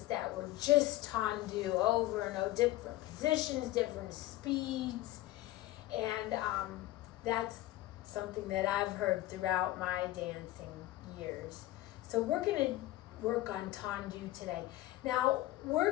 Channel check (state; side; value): quieter; right; 16.3 dB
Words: that were just tendu over and over, different positions, different speeds, and that's something that I've heard throughout my dancing years. So we're going to work on tendu today. Now, we're